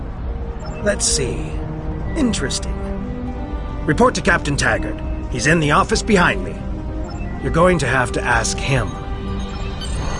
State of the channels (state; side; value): identical; both; correlation 1.00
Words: Let's see. Interesting. Report to Captain Taggart. He's in the office behind me. You're going to have to ask him.